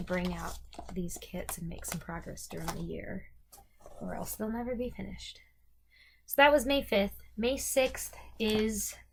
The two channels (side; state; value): both; identical; correlation 1.00